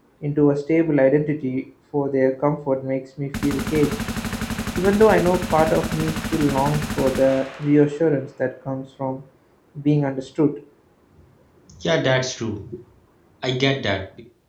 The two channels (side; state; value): both; identical; correlation 1.00